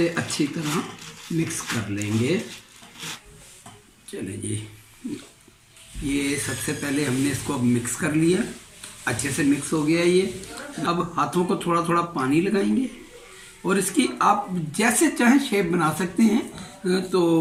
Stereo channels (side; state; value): both; identical; correlation 1.00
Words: अच्छी तरह मिक्स कर लेंगे। चलें जी, ये सबसे पहले हमने इसको अब मिक्स कर लिया, अच्छे से मिक्स हो गया ये। अब हाथों को थोड़ा थोड़ा पानी लगाएंगे और इसकी आप जैसे चाहें शेप बना सकते हैं। तो